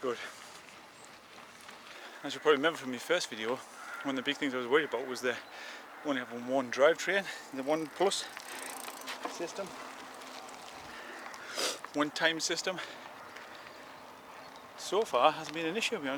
As you probably remember from my first video, one of the big things I was worried about was the only having one drivetrain, the 1 Plus system, 1 time system. So far hasn't been an issue, to be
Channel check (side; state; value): both; identical; correlation 1.00